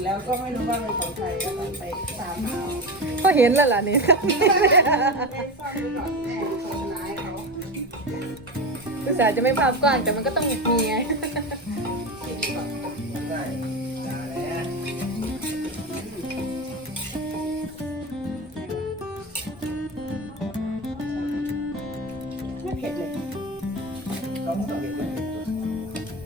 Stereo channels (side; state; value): both; normal; correlation 0.22